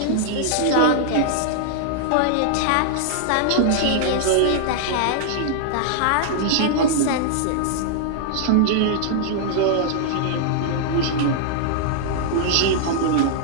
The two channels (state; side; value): different; both; correlation -0.01